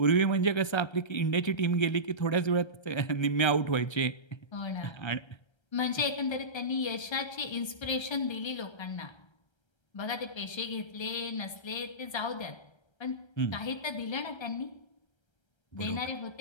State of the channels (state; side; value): late; right; 1.3 ms